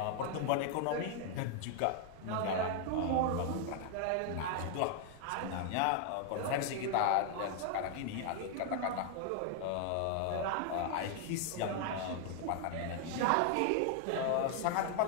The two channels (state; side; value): different; both; correlation 0.00